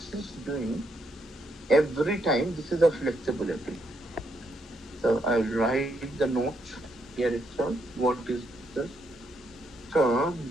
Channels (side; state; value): both; normal; correlation 0.77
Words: is doing every time. This is a flexibility. So I'll write the note here itself. What is this? So